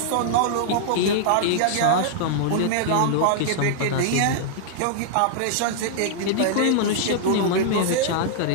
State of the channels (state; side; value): different; both; correlation -0.01